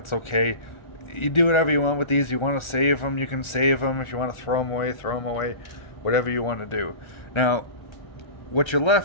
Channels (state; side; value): late; right; 1.4 ms